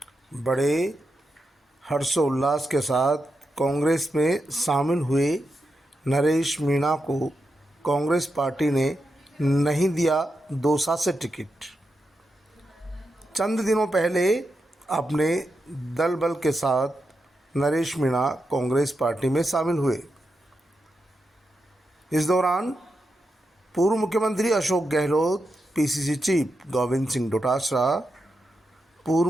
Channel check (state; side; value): normal; both; correlation 0.87